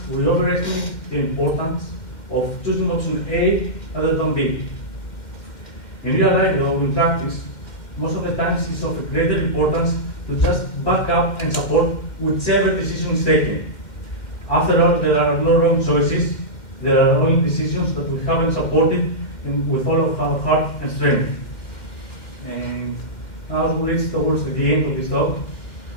we overestimate the importance of choosing option A rather than B. In real life, though, in practice, most of the times it's of greater importance to just back up and support whichever decision is taken. After all, there are no wrong choices. There are only decisions that we haven't supported with all of our heart and strength. And now as we reach towards the end of this talk,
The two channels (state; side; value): late; right; 2.1 ms